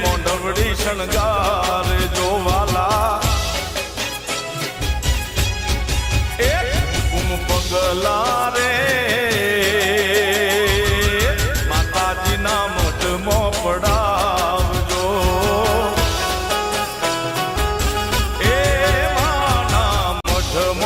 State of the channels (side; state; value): both; identical; correlation 1.00